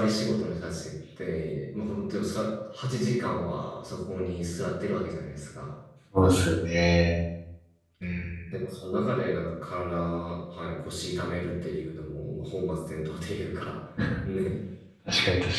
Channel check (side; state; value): both; identical; correlation 1.00